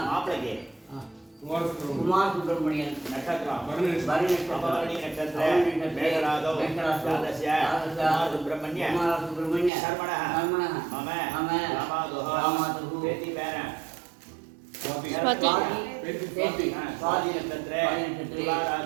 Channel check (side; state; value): left; drops out; at 9.7 s